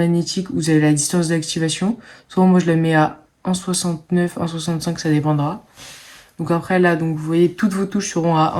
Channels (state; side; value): identical; both; correlation 1.00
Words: vous avez la distance d'activation. Soit moi, je la mets à 1,69, 1,65, ça dépendra. Donc après, là, donc, vous voyez, toutes vos touches seront à